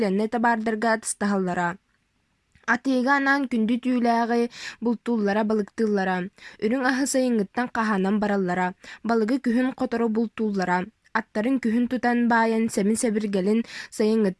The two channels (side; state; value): both; identical; correlation 1.00